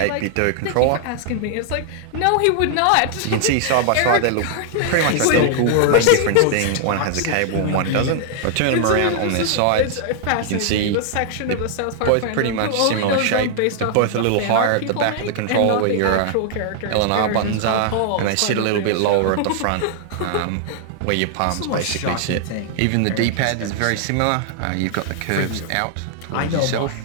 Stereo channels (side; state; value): both; different; correlation 0.00